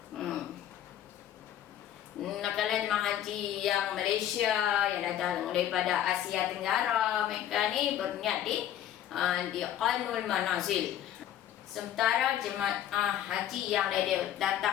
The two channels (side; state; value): right; quieter; 11.2 dB